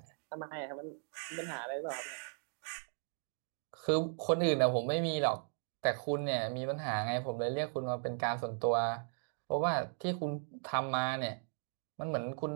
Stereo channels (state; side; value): silent; left; 53 dB below the other